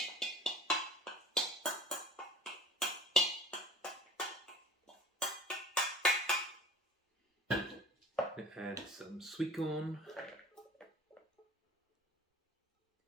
Add some sweetcorn,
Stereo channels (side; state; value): both; normal; correlation 0.45